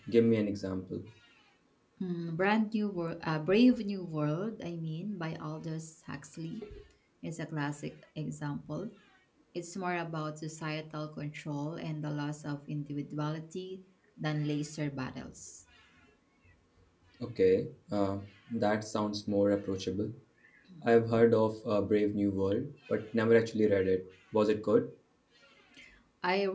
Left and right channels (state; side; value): identical; both; correlation 1.00